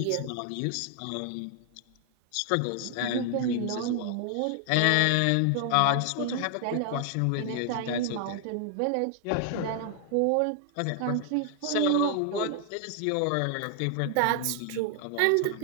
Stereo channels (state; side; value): different; both; correlation 0.00